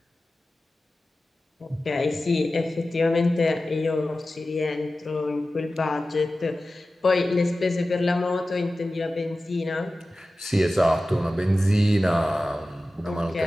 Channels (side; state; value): both; normal; correlation 0.95